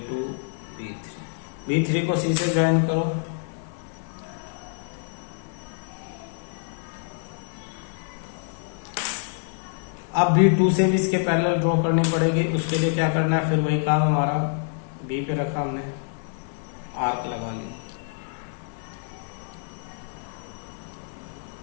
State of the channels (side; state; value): right; silent; digital silence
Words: B3। B3 को सी से ज्वाइन करो। अब B2 से भी इसके पैरेलल ड्रॉ करनी पड़ेगी, उसके लिए क्या करना है, फिर वही काम हमारा। B पे रखा हमने, आर्क लगा लिया,